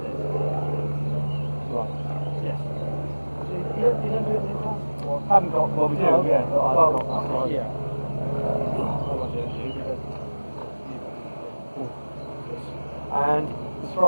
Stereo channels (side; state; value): both; inverted; correlation -1.00